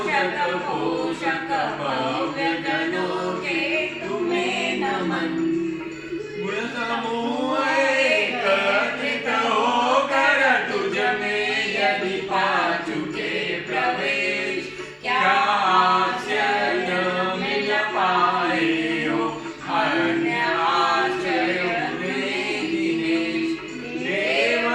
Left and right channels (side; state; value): both; identical; correlation 1.00